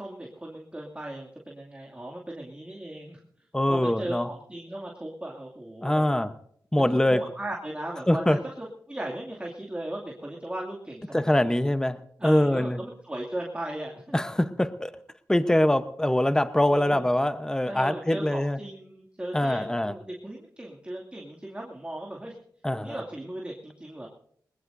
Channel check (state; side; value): normal; both; correlation 0.98